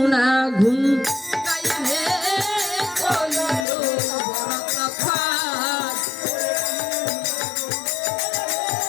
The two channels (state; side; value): drops out; right; at 3.7 s